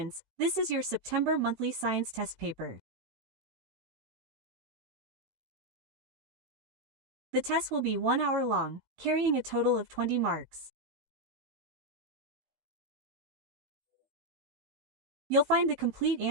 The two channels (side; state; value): left; late; 16 ms